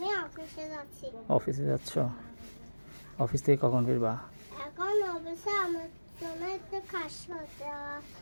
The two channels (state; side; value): inverted; both; correlation -1.00